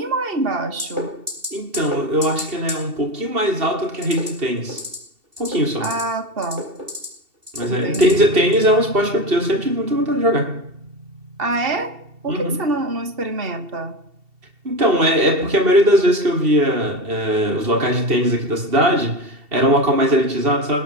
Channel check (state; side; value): late; left; 2.7 ms